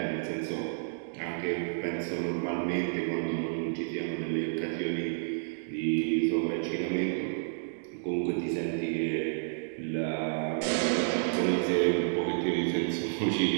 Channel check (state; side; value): silent; left; digital silence